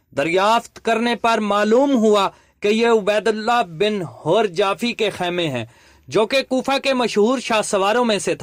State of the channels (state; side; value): identical; both; correlation 1.00